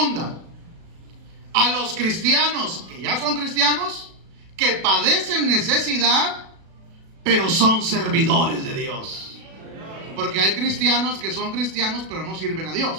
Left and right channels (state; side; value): late; left; 37 ms